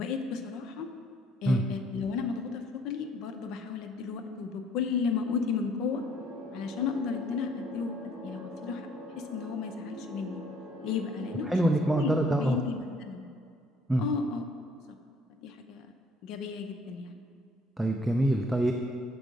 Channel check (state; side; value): normal; both; correlation 0.61